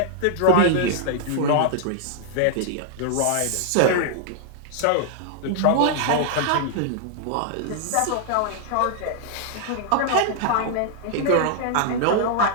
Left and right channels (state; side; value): different; both; correlation -0.01